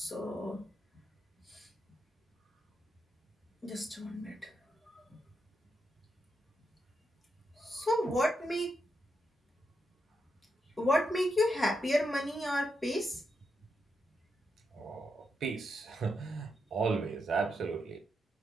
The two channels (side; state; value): both; normal; correlation 0.84